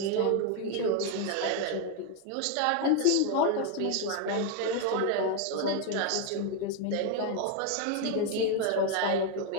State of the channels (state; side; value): different; both; correlation 0.01